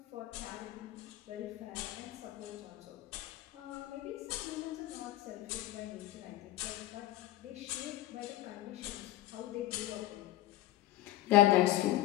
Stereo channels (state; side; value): quieter; right; 15.7 dB